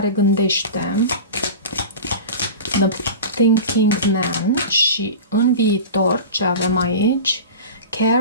gândește, The Thinking Man, și în viitor ce avem aici,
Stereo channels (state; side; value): inverted; both; correlation -0.31